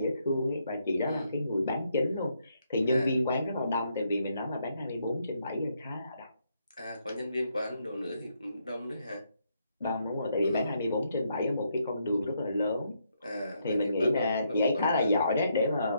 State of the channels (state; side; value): inverted; both; correlation -0.76